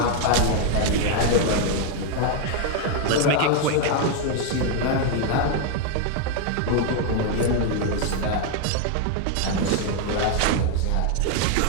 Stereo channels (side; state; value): both; different; correlation 0.01